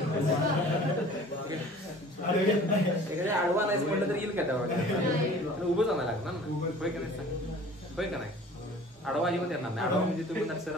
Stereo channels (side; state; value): both; normal; correlation 0.47